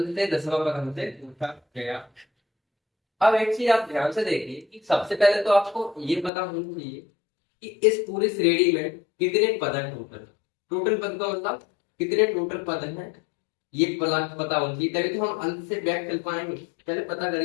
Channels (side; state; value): right; drops out; at 6.3 s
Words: से 10वां पद हमसे पूछा गया। अब एक चीज आप ध्यान से देखिए कि सबसे पहले तो आपको ये पता होना चाहिए कि इस पूरी श्रेणी में कितने पद हैं टोटल। टोटल पद का मतलब कितने टोटल पद हैं, ये पता होना चाहिए, तभी तो हम अंत से बैक चल पाएंगे। पहले पता